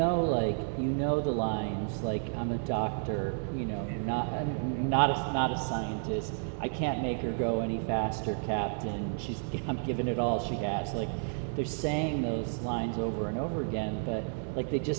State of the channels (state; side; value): silent; left; 57 dB below the other